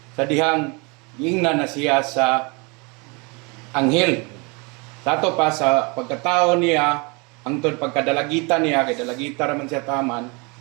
sa dihang giingnan na siya sa anghel. Sato pa sa pagkatao niya, hangtod pagkadalagita niya, kay dalagita raman siya taman,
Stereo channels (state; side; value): quieter; left; 29.6 dB